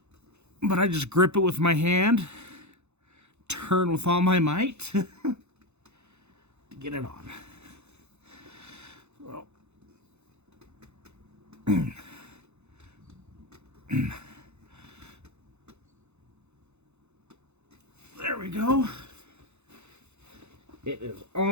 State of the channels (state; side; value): late; left; 0.81 ms